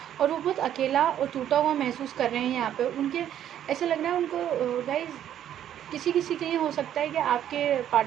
और वो बहुत अकेला और टूटा हुआ महसूस कर रहे हैं। यहाँ पे उनके ऐसा लग रहा है उनको गाइज़, किसी किसी के लिए हो सकता है कि आपके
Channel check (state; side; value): quieter; left; 10.7 dB